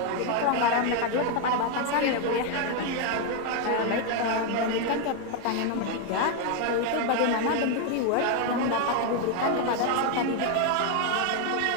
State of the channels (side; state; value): both; different; correlation 0.01